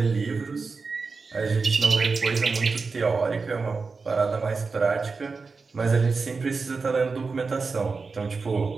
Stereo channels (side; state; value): left; quieter; 4.5 dB